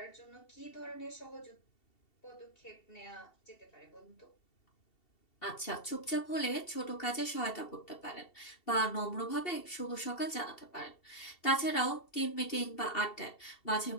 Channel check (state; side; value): late; right; 2.7 ms